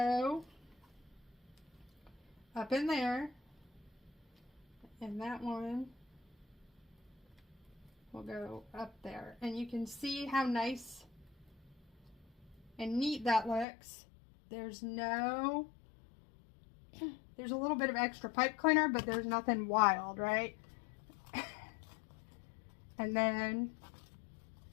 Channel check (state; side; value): drops out; right; at 13.7 s